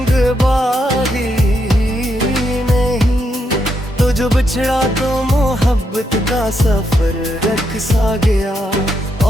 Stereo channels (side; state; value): both; normal; correlation 0.80